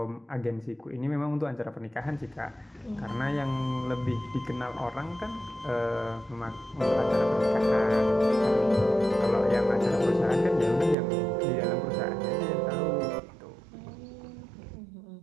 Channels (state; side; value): drops out; left; at 11.0 s